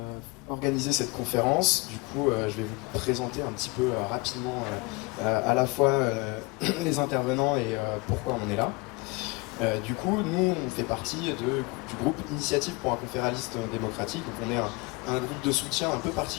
organiser cette conférence. Du coup, je vais vous présenter un petit peu rapidement à la fois les intervenants et pourquoi on est là. Du coup, nous, on fait partie du groupe Initiative pour un conféraliste démocratique. Donc on est un groupe de soutien un peu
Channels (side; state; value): right; quieter; 26.4 dB